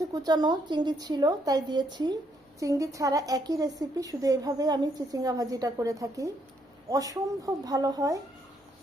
কুচানো চিংড়ি ছিল তাই দিয়েছি। চিংড়ি ছাড়া একই রেসিপি, শুধু এভাবে আমি চিচিঙ্গা ভাজিটা করে থাকি। অসম্ভব ভালো হয়,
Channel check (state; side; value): normal; both; correlation 0.72